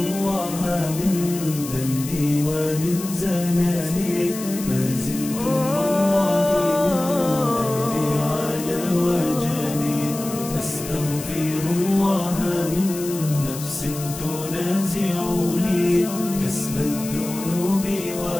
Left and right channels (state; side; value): noise; left; hiss, 11 dB below the sound